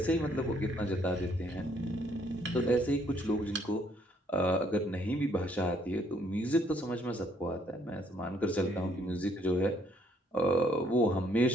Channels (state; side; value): normal; both; correlation 0.67